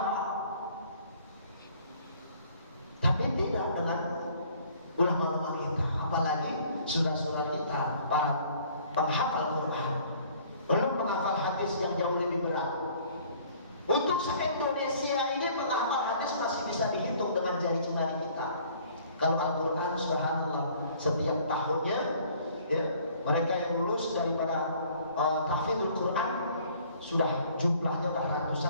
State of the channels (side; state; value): both; inverted; correlation -0.56